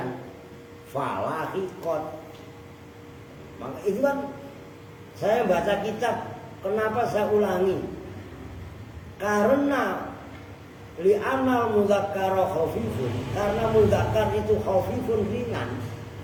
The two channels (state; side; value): identical; both; correlation 1.00